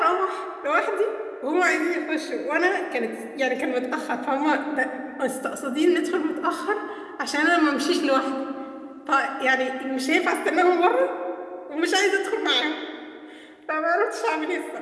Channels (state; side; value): identical; both; correlation 1.00